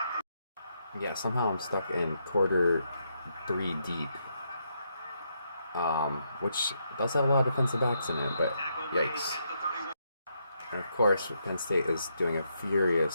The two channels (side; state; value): both; inverted; correlation -0.78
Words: Yeah, somehow I'm stuck in quarter 3 deep. Which does have a lot of defensive backs in it, but yikes. And of course, Penn State is doing a